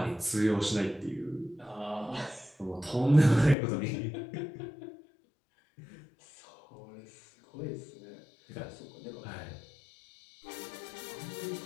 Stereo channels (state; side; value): drops out; right; at 3.6 s